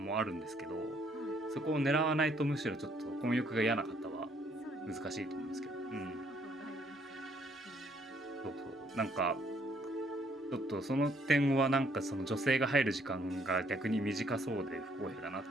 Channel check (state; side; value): normal; both; correlation 0.67